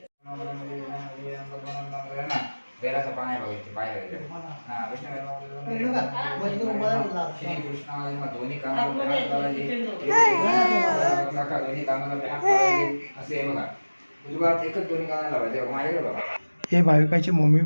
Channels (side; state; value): both; inverted; correlation -1.00